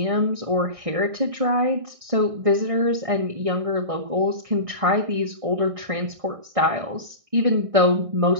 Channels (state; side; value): late; left; 1.6 ms